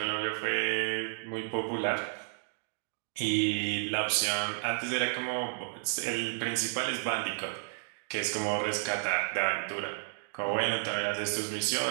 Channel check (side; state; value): left; silent; digital silence